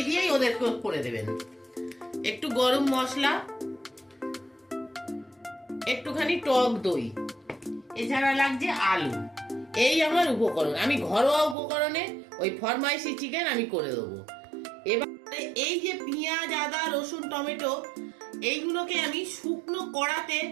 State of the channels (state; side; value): drops out; left; at 11.6 s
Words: দিয়েই ওদেরকে করে দেবেন। একটু গরম মশলা, একটুখানি টক দই, এছাড়া লাগছে আলু। এই আমার উপকরণ। আমি ঘরোয়া উপকরণে ওই ফরমাইশি চিকেন আমি করে দেবো। এবারে এই যে পেঁয়াজ, আদা, রসুন, টমেটো, এইগুলোকে আমি শুকনো কড়াতে